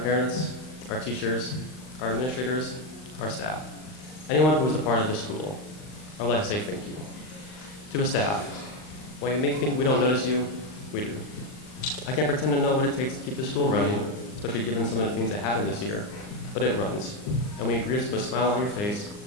our teachers, our administrators, our staff, anyone who is a part of this school. I would like to say thank you. To the staff, while you may think we don't notice you, we do. I can't pretend to know what it takes to keep the school running, especially given some of the things that happened this year, but it runs. And when you greet us with a smile on your face,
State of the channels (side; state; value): right; late; 39 ms